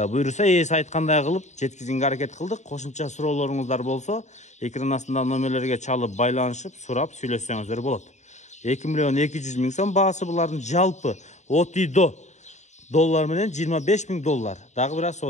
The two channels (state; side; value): late; right; 0.34 ms